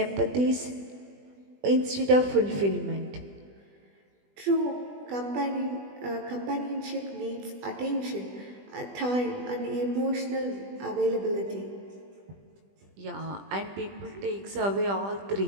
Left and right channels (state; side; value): late; left; 20 ms